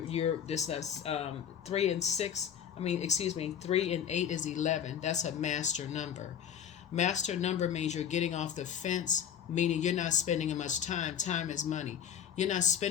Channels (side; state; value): right; quieter; 8.7 dB